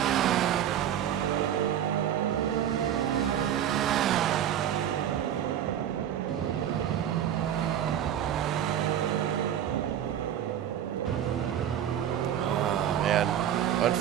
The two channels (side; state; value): left; quieter; 10.2 dB